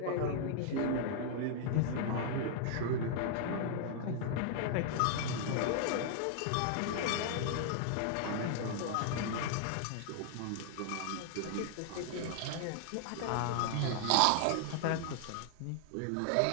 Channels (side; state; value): both; different; correlation -0.01